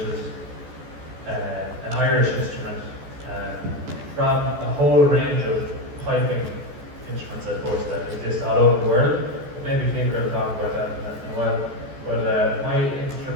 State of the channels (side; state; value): left; late; 14 ms